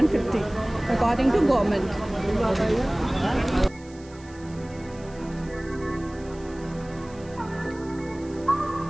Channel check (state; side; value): noise; right; hiss, 25 dB below the sound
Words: according to government.